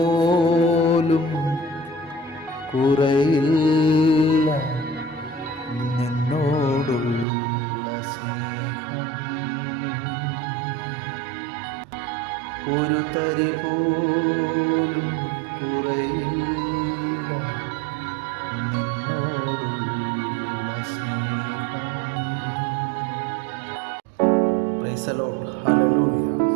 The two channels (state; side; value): drops out; left; at 7.2 s